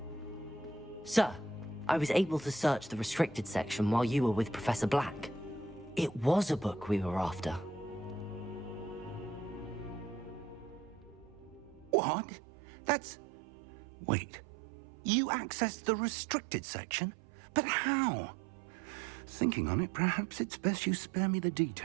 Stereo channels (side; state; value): left; drops out; at 12.0 s